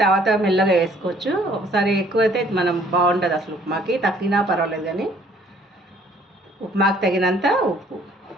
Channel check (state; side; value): normal; both; correlation 0.59